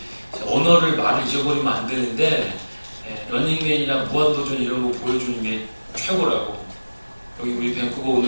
언어를 말을 잊어버리면 안 되는데 런닝맨이나 무한도전 이런 거 보여주는 게 최고라고. 여기 우리 밴쿠버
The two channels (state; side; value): inverted; both; correlation -1.00